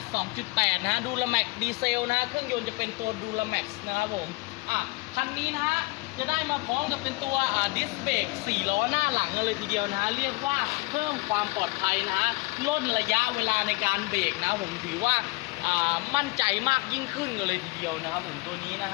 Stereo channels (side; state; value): right; quieter; 24.8 dB